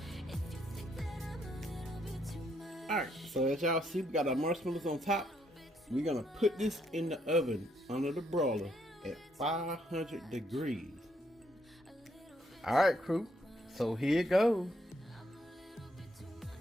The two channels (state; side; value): normal; both; correlation 0.73